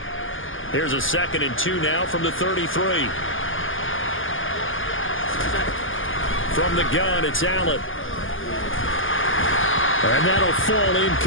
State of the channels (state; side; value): late; right; 0.58 ms